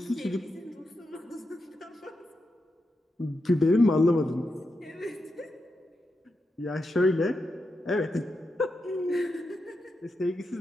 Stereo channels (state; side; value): normal; both; correlation 0.87